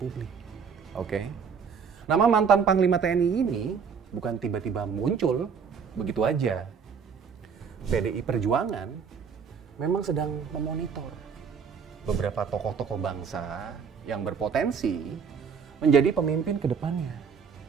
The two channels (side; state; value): left; quieter; 6.4 dB